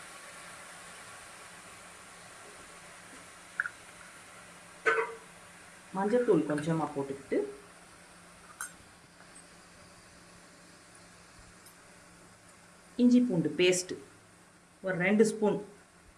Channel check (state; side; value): identical; both; correlation 1.00